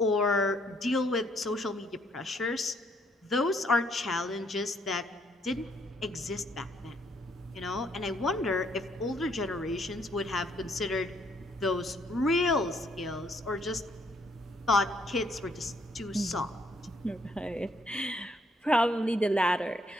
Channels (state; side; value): normal; both; correlation 0.68